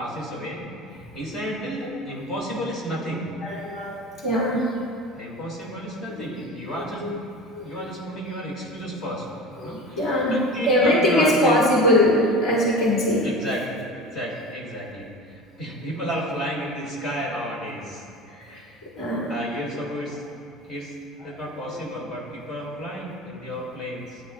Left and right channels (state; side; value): normal; both; correlation 0.33